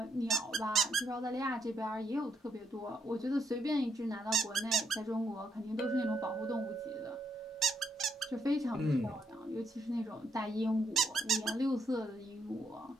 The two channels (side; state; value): both; normal; correlation 0.76